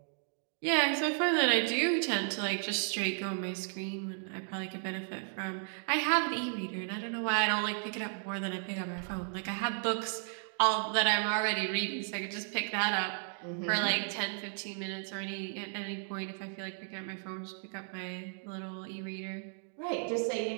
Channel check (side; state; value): left; silent; 55 dB below the other